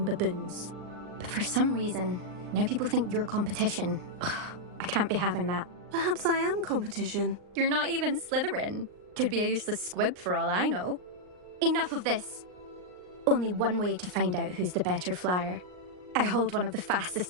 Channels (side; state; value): left; late; 39 ms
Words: baboons. But for some reason, now people think you're competition. Ugh, I can't be having that. Perhaps I am competition. You're not even Slytherin. Could be a useless squib for all I know. Enough of this. Only one way to find out who's the better flyer. I hold one of the fastest